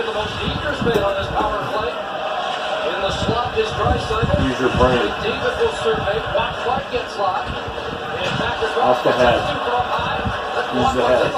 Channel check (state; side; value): identical; both; correlation 1.00